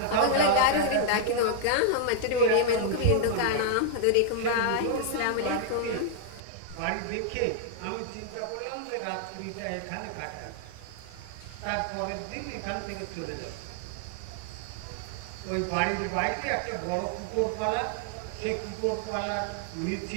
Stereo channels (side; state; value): both; different; correlation 0.00